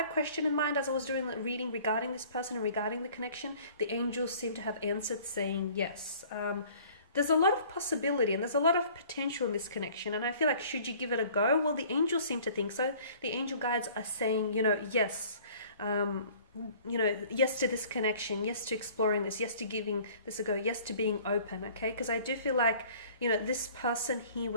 question in mind as I was doing the reading regarding this person and regarding the connection, the angels seem to have answered saying yes. There's a lot of possibility and there's a lot of potential in this connection, and I feel like should you give it a go? Well, the angels seem to think so. The angel guides are saying, you know, yes. Yes to this connection, yes to exploring this, yes to giving this a go, yes to being open, okay? Because I do feel like, you know, this person here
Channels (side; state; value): both; inverted; correlation -0.52